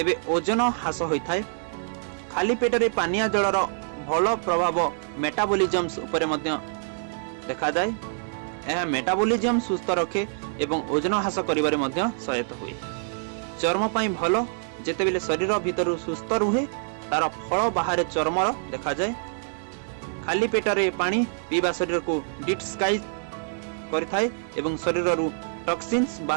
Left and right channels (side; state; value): left; silent; digital silence